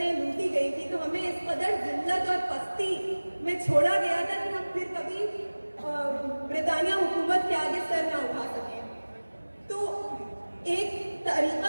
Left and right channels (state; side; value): inverted; both; correlation -1.00